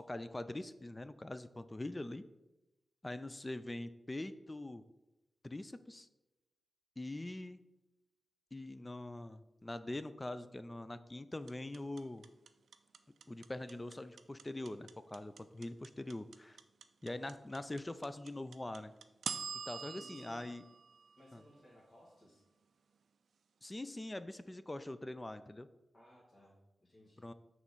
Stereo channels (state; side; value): normal; both; correlation 0.95